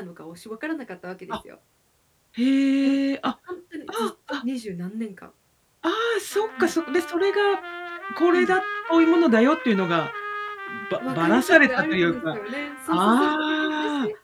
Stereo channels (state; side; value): identical; both; correlation 1.00